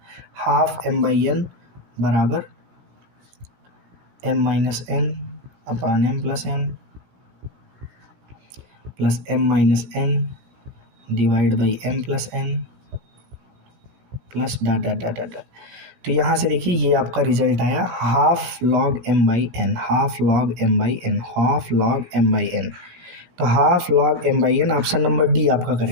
हाफ m/n बराबर m minus n upon m plus n plus m minus n divide by m plus n plus dot dot dot dot. तो यहाँ से देखिए ये आपका रिजल्ट आया half log m by n, half log m by n, half log m by n. तो half log m by n, option number D आपका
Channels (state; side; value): late; left; 16 ms